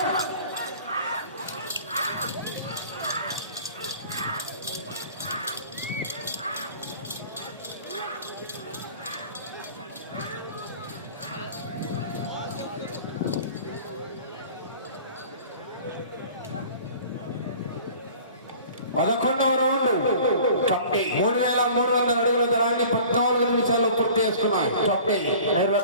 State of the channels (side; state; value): both; inverted; correlation -0.45